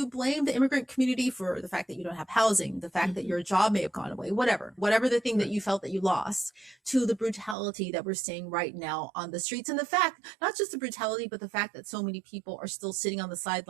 blame the immigrant community for the fact that you don't have housing, the fact that your job may have gone away, whatever the thing that you felt that you lost, to the brutality that we're seeing right now on the streets. And the fact, not just the brutality, but the fact that so many people are still sitting on the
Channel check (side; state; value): left; drops out; at 7.6 s